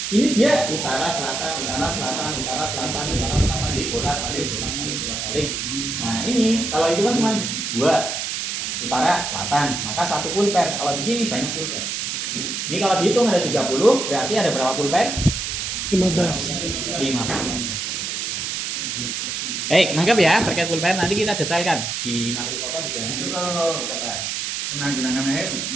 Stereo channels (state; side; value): noise; right; hiss, 3 dB below the sound